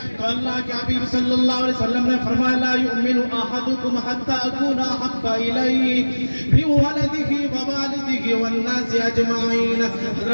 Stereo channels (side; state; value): both; inverted; correlation -1.00